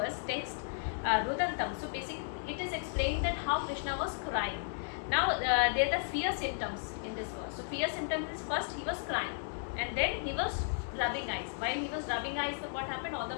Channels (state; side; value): silent; right; digital silence